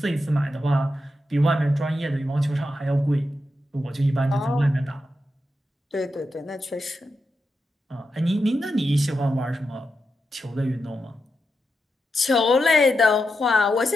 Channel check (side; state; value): both; normal; correlation 0.87